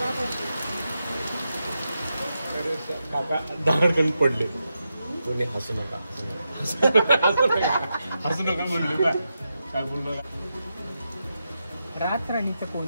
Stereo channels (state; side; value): inverted; both; correlation -0.87